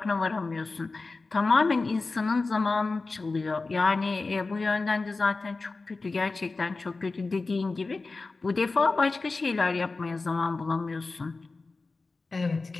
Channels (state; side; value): quieter; right; 3.7 dB